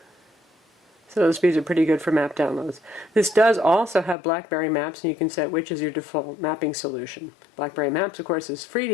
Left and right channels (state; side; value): drops out; right; at 4.2 s